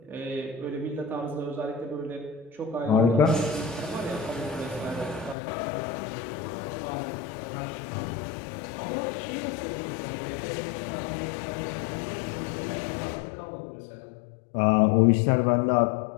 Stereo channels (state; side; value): drops out; right; at 5.4 s